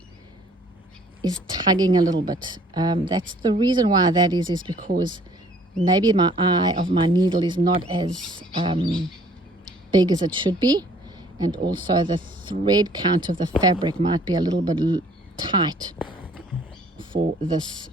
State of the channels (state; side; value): normal; both; correlation 0.57